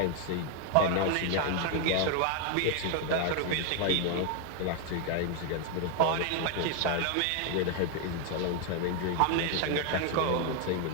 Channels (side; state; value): both; different; correlation 0.01